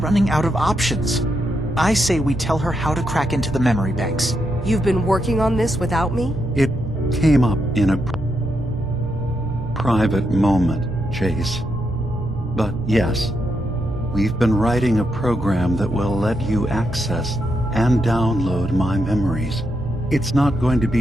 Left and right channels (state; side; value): normal; both; correlation 0.82